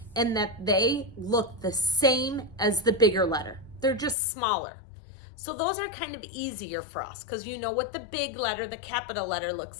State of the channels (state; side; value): drops out; right; at 4.2 s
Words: and that they look the same as the bigger letter. They're just smaller. So those are kind of easier for us because you know what the big letter, the capital letter